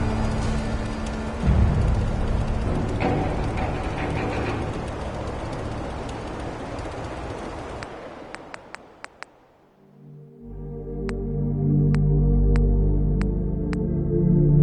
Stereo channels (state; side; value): identical; both; correlation 1.00